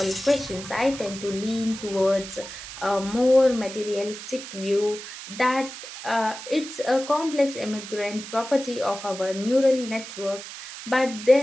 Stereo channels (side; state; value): right; noise; hiss, 12 dB below the sound